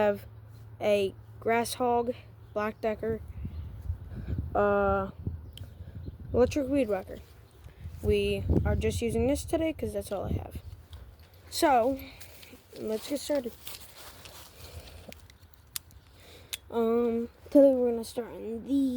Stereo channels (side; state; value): both; identical; correlation 1.00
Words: a grass hog, black decker, electric weed whacker. We are just using this today because that's all I have. So let's get started. Today we're gonna start on